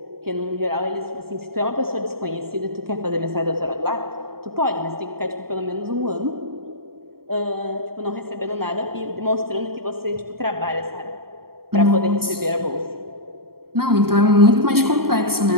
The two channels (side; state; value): left; late; 0.94 ms